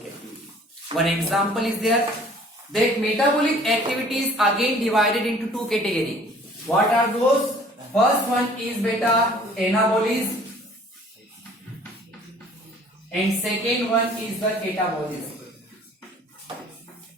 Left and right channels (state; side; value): normal; both; correlation 0.52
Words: activity. One example is there, that metabolic activity is again divided into two categories. What are those? First one is beta anabolism, and second one is the catabolism.